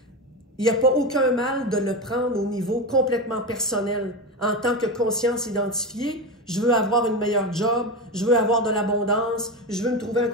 Il n'y a pas aucun mal de le prendre au niveau complètement personnel. En tant que conscience identifiée, je veux avoir une meilleure job, je veux avoir de l'abondance, je veux me trouver un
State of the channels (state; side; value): normal; both; correlation 0.18